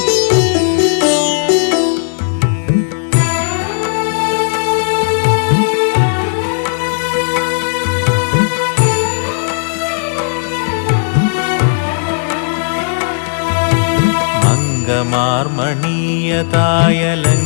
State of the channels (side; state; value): right; silent; 66 dB below the other